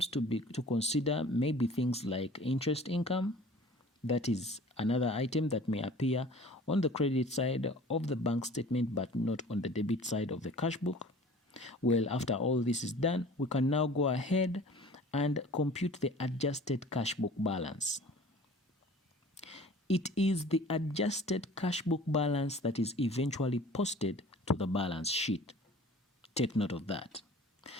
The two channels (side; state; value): both; normal; correlation 0.46